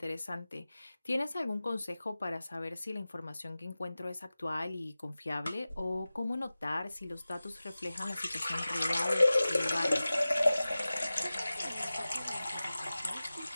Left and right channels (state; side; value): inverted; both; correlation -0.97